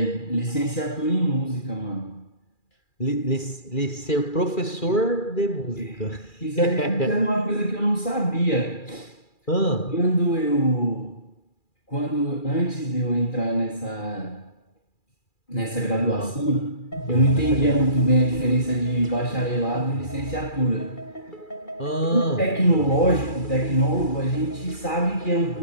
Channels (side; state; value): right; late; 2.4 ms